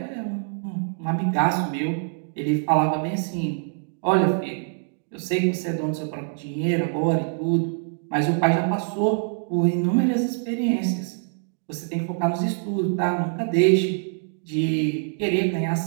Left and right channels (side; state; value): left; silent; digital silence